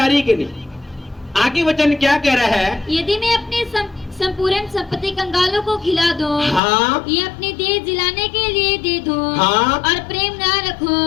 रही है कि नहीं? आगे वचन क्या कह रहा है? यदि मैं अपनी संपूर्ण संपत्ति कंगालों को खिला दूं, हाँ, ये अपनी देह जिलाने के लिए दे दूं, हाँ, और प्रेम ना रखूं,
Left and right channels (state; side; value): drops out; right; at 6.6 s